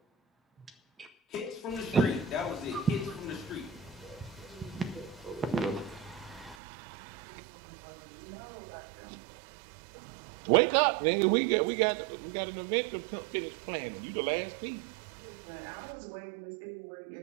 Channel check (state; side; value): drops out; left; at 6.6 s